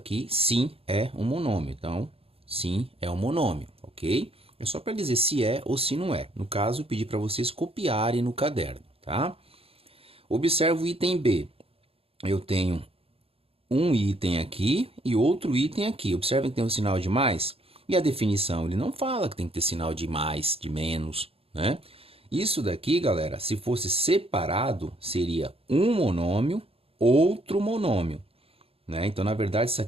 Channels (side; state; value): left; late; 0.28 ms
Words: sim é um monômio. Então, sim é um monômio, ok? É só para dizer se é ou se não é. No caso, eu pedi para vocês copiarem no caderno, tá? Observe o item B. Eu tenho um item aqui e outro item aqui. Observem que tem um sinal de mais. E a definição, ele não fala que tem que ter sinal de mais, de menos, né? Isso daqui, galera, se fosse separado, seria um monômio, outro monômio, né? Então, na verdade, isso